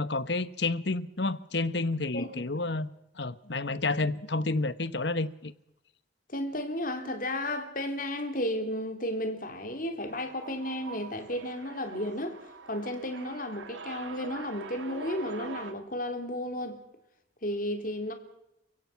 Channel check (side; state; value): both; normal; correlation 0.23